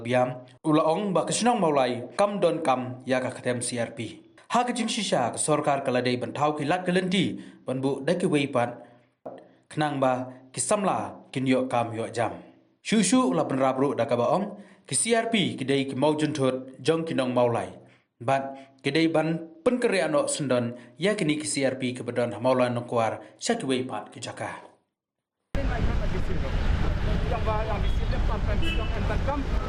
Biam ulaong ba kesinong maulai kam don kam ya ka ketem CRP ha kejing shisha ka sorkar kaladai ban thau ki lat kelenti ban bu dai ki weipat kenang ba ki samla kin yo kam yo jam Shushu la ban rabru da ka baong ki CRP ki dai ki maujun thot jong kinong maulai bat ki dai ban pen kereano sendon ya kini ki CRP ki bedon maulai nongkwar syaki weipat ki jaka yang di sini sampai bilang entar kam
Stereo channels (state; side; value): identical; both; correlation 1.00